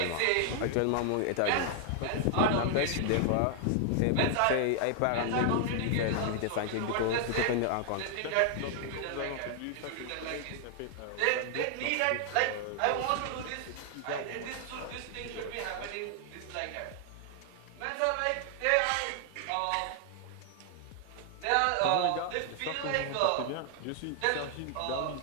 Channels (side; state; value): both; different; correlation 0.00